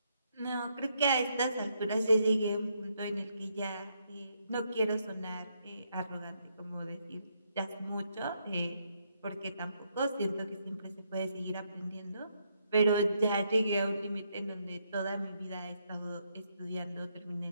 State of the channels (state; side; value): inverted; both; correlation -0.76